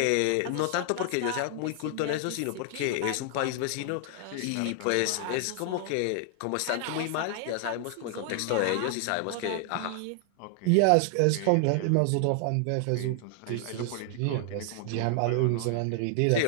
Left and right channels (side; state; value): both; different; correlation 0.00